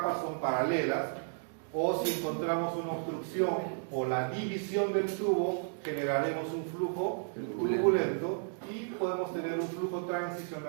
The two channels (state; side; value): silent; left; digital silence